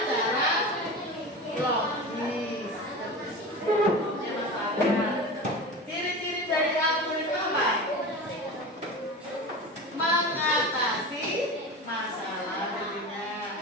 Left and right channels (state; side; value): normal; both; correlation 0.30